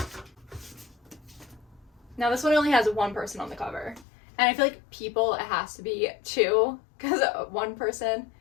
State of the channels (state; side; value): drops out; right; at 4.0 s